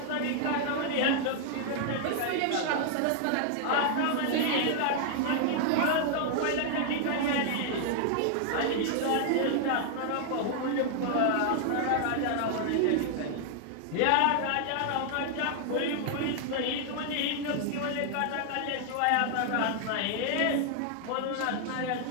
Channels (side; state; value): both; different; correlation 0.00